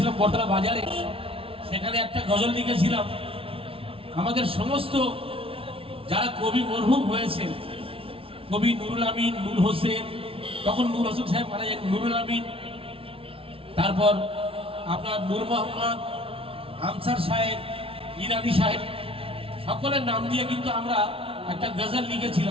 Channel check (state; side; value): late; left; 0.26 ms